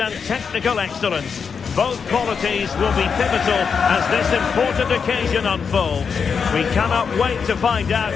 technical excellence. Both qualities will be pivotal as this important occasion unfolds. We cannot wait to find out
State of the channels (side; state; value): right; quieter; 6.1 dB